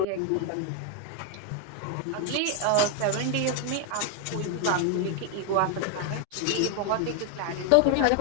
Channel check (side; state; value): both; different; correlation 0.01